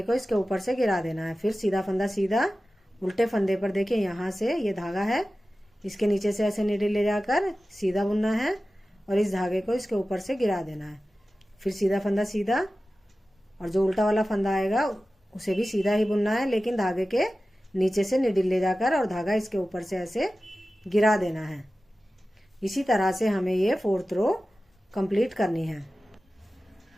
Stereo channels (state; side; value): normal; both; correlation 0.95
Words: को इसके ऊपर से गिरा देना है। फिर सीधा फंदा सीधा, उल्टे फंदे पर देखिए यहाँ से ये धागा है, इसके नीचे से ऐसे नीडल ले जाकर सीधा बुनना है और इस धागे को इसके ऊपर से गिरा देना है। फिर सीधा फंदा सीधा, और जो उल्टा वाला फंदा आएगा उसे भी सीधा ही बुनना है, लेकिन धागे के नीचे से नीडल ले जाकर और धागा इसके ऊपर से ऐसे गिरा देना है। इसी तरह से हमें ये फोर्थ रो कंप्लीट करनी है।